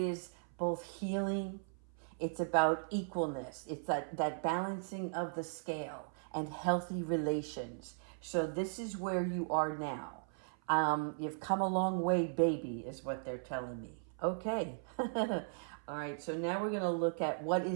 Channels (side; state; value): left; silent; 53 dB below the other